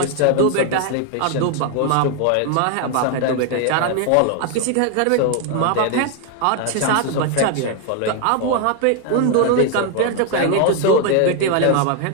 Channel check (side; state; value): both; different; correlation 0.01